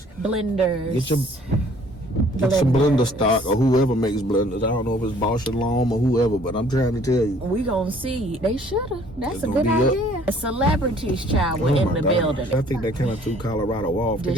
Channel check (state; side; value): normal; both; correlation 0.57